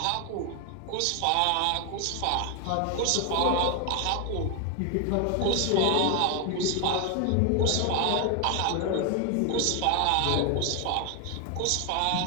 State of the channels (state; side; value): different; both; correlation 0.01